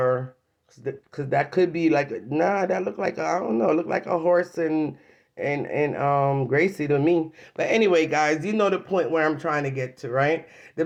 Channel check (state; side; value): identical; both; correlation 1.00